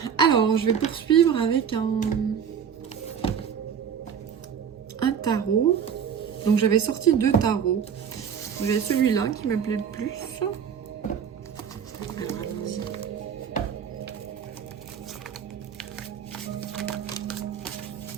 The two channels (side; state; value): left; quieter; 7.7 dB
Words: Alors, je vais poursuivre avec un tarot. Donc j'avais sorti 2 tarots. J'ai celui-là qui me plaît le plus. Alors allons-y.